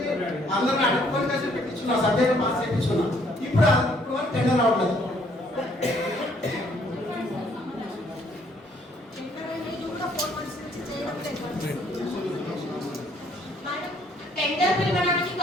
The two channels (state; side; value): normal; both; correlation 0.64